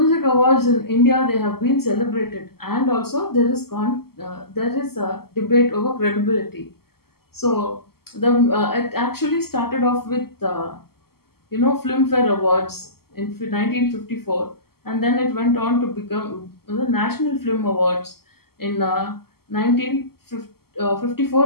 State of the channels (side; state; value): right; late; 0.95 ms